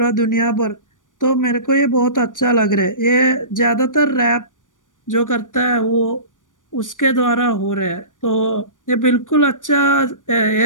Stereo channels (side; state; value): right; late; 0.88 ms